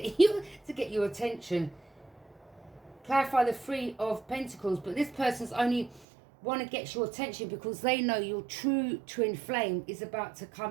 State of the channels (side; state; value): left; drops out; at 6.1 s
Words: your attention. Clarify the Three of Pentacles, but this person's only want to get your attention because they know your true twin flame is about to